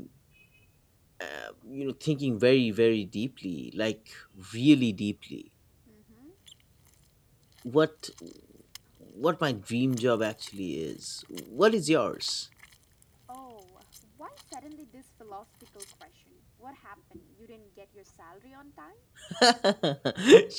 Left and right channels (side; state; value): both; identical; correlation 1.00